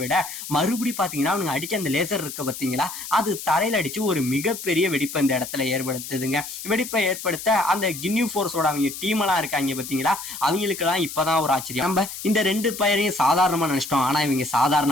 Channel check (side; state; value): left; noise; hiss, 9 dB below the sound